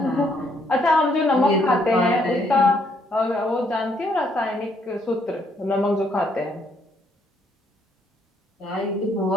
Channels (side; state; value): both; normal; correlation 0.70